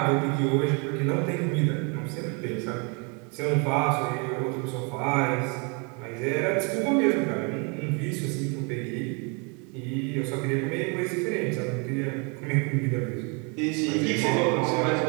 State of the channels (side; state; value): left; quieter; 33.6 dB